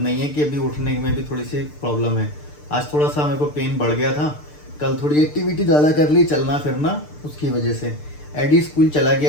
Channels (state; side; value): late; right; 6.7 ms